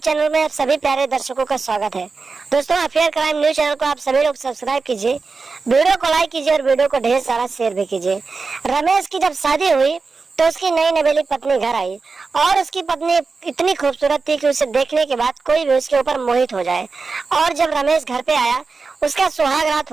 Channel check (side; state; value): left; quieter; 4.4 dB